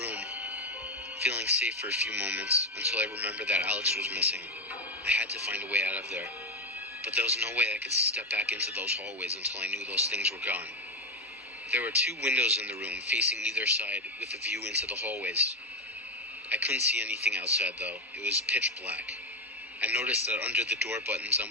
feeling safe for a few moments, until I remembered that Alex was missing. I had to find a way out of there. But there was no way I could step back into those hallways until I knew those things were gone. There were 2 windows in the room, facing either side, with a view into the hallways. I couldn't see anything outside, though. It was pitch black. I noticed that under the door buttons on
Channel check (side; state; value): both; normal; correlation 0.11